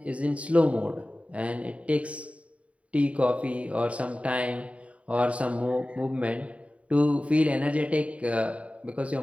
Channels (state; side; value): late; left; 0.065 ms